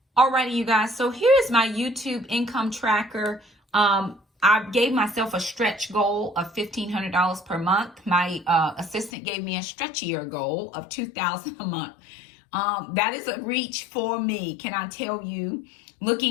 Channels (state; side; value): drops out; right; at 9.1 s